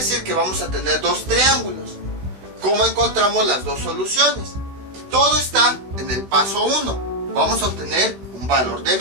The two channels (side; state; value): left; late; 15 ms